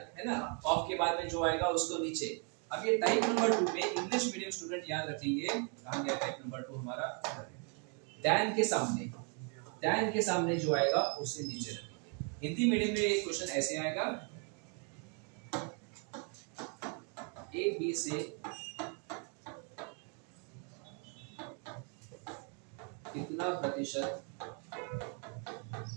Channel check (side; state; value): left; quieter; 39.2 dB